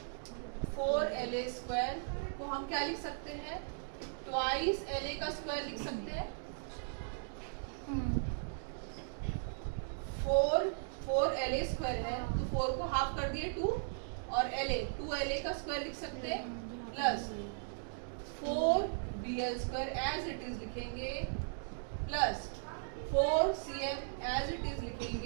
4 LA स्क्वायर को हम क्या लिख सकते हैं ट्वाइस LA का स्क्वायर लिख सकते हैं 4 LA स्क्वायर है तो 4 को हाफ कर दिए 2 और टू LA का स्क्वायर लिख सकते हैं plus 4 BL square as it is लिखेंगे plus 4 CM as it is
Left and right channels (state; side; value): silent; left; digital silence